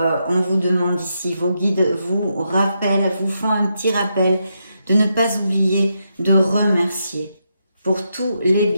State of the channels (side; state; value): both; inverted; correlation -0.82